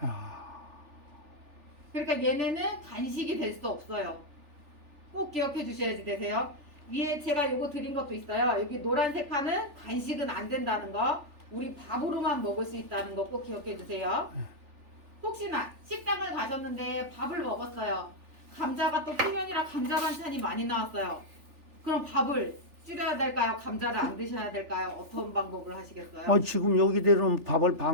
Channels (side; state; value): left; late; 3.4 ms